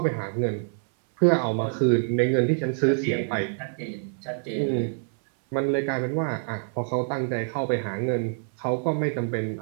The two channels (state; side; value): silent; left; 61 dB below the other